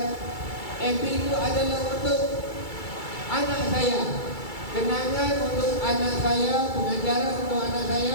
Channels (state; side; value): late; right; 2.3 ms